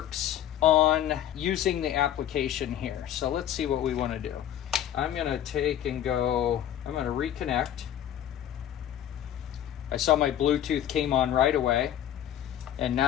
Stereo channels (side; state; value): right; quieter; 11.0 dB